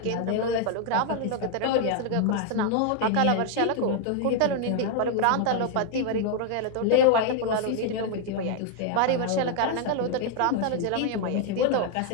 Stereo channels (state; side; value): different; both; correlation 0.00